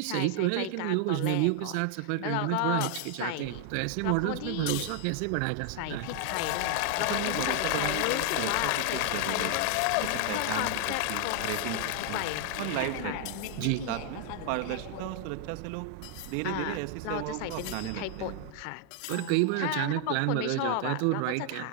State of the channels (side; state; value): both; different; correlation 0.00